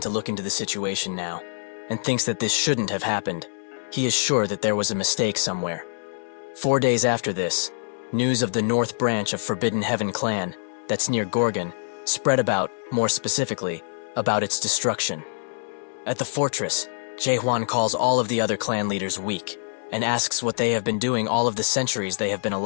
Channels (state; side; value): silent; right; digital silence